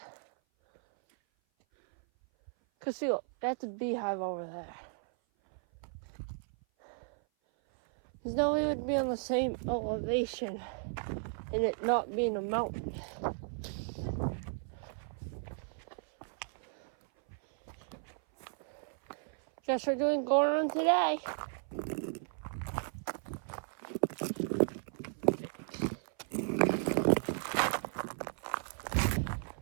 Cause see, look, that's a beehive over there. There's no way it would be on the same elevation and it not being a mountain. Guess we're doing going on today.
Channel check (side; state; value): left; silent; 54 dB below the other